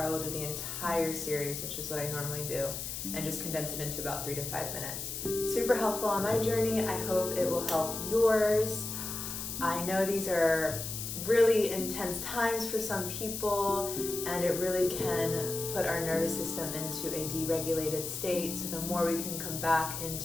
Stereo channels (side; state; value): left; noise; hiss, 5 dB below the sound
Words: I will do the entire series, which is what I normally do, and just condense it into about 3 to 5 minutes. Super helpful on my journey. I hope it will help yours. I know these are really intense times for some people, and it really can put our nervous system into a deregulated state. So the more we can come back